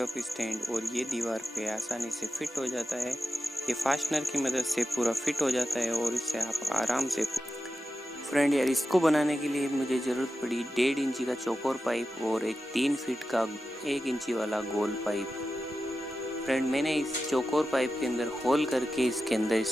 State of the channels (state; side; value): normal; both; correlation 0.91